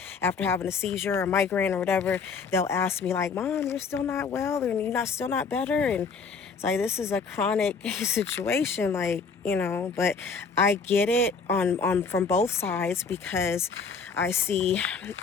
after having a seizure or migraine or whatever, they'll ask me like, Mom, you're still not well, and you're still not better. And it's like, this is a chronic situation, like, but I get it on from both sides, because I see,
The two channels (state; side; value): quieter; right; 5.1 dB